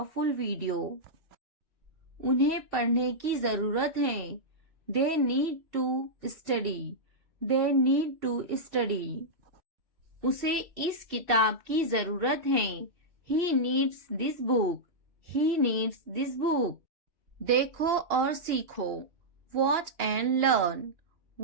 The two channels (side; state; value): left; late; 2.8 ms